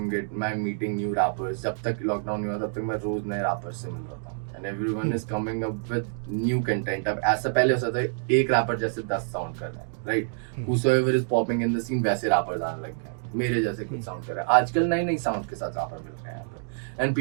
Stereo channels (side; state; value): left; silent; digital silence